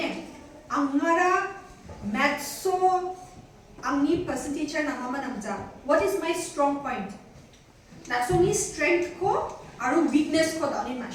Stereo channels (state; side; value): identical; both; correlation 1.00